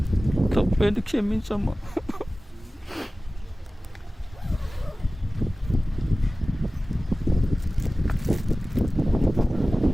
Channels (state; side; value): normal; both; correlation 0.97